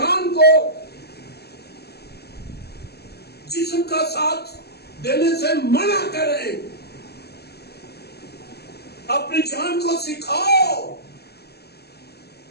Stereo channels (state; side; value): late; right; 0.47 ms